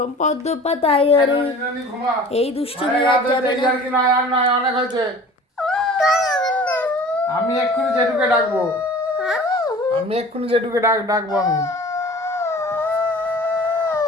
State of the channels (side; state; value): both; normal; correlation 0.43